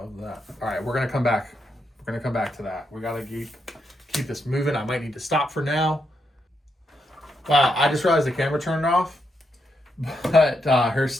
All right, we're gonna come back. We're gonna come back to that. We gotta keep this moving. I might need to stop for now. Wow, I just realized the camera turned off. But her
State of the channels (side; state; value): both; normal; correlation 0.81